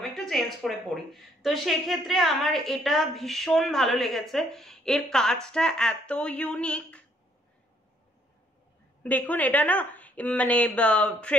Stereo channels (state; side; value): normal; both; correlation 0.67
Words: একটু চেঞ্জ করে পড়ি। তো সেক্ষেত্রে আমার এটা ভীষণ ভালো লেগেছে, এর কাজটা এত ইউনিক। দেখুন এটা না মানে